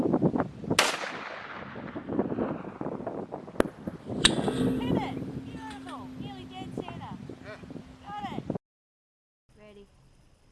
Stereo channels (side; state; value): both; identical; correlation 1.00